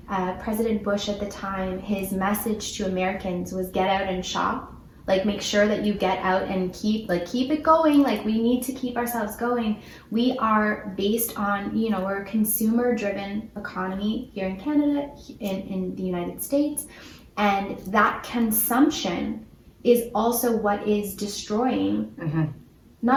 President Bush at the time, his message to Americans was get out and shop. Like, make sure that you get out and keep it going. Like, we need to keep ourselves going. We are based on, we're a consumer-driven economy here in Canada, in the United States, and that consumption is also what is destroying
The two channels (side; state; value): both; identical; correlation 1.00